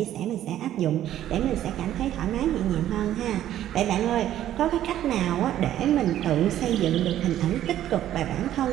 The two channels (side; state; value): left; quieter; 12.1 dB